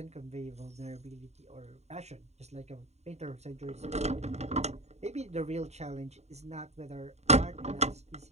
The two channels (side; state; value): left; late; 0.32 ms